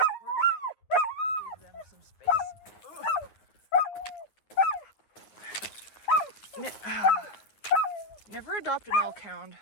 Never adopt an elk hound.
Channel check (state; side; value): late; right; 9.7 ms